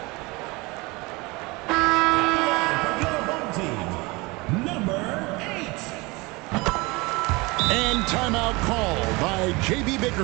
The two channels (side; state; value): left; quieter; 24.6 dB